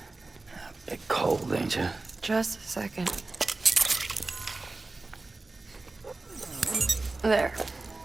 bit cold, ain't you? Just a second. There.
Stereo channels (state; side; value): quieter; left; 3.3 dB